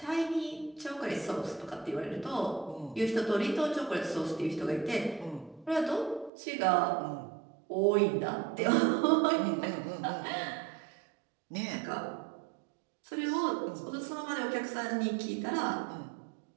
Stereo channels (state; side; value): drops out; left; at 6.3 s